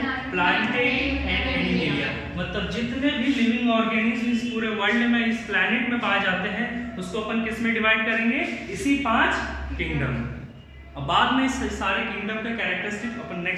Plantae and animalia. मतलब जितने भी लिविंग ऑर्गेनिज्म इस पूरे वर्ल्ड में, इस प्लैनेट में पाए जाते हैं उसको अपन किस में डिवाइड करेंगे? इसी 5 किंगडम। अब बाद में इस सारे किंगडम का कैरेक्टरिस्टिक अपन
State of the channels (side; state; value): both; identical; correlation 1.00